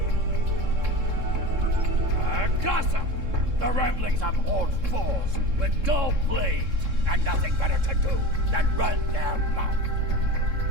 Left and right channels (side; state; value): left; late; 3.7 ms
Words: Gossip! The ramblings of old fools with dull blades and nothing better to do than run their mouth.